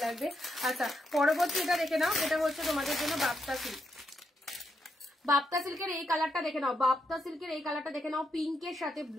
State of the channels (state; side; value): normal; both; correlation 0.81